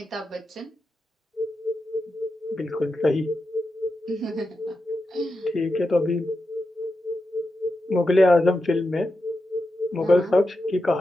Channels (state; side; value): normal; both; correlation 0.89